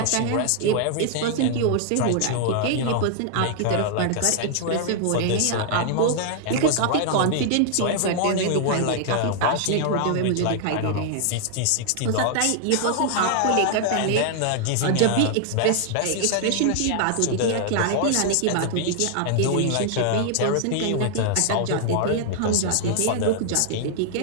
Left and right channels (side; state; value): both; different; correlation -0.01